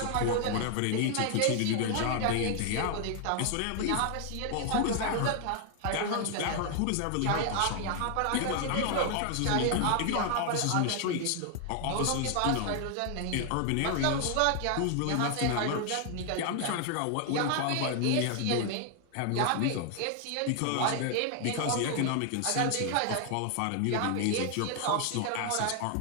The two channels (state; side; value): different; both; correlation 0.00